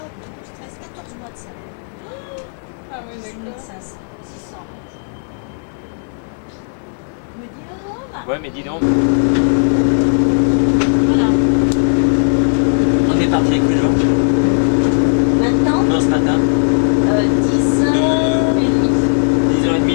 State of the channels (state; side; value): silent; right; 65 dB below the other